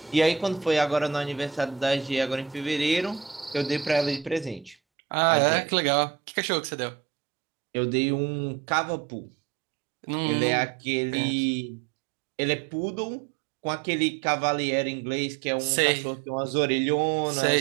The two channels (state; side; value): drops out; left; at 4.8 s